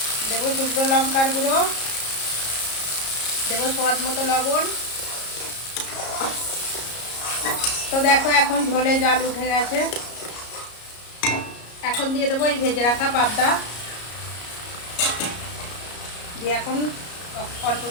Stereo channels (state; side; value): late; right; 33 ms